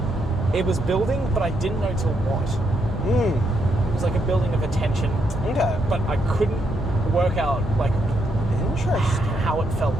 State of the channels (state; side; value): normal; both; correlation 0.78